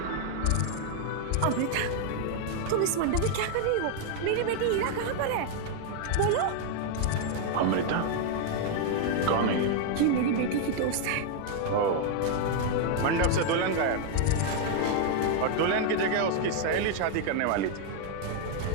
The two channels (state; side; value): different; both; correlation 0.00